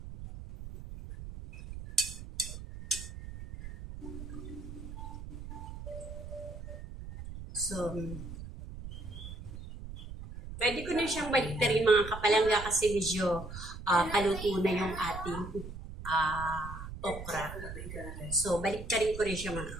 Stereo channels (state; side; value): noise; right; rumble, 10 dB below the sound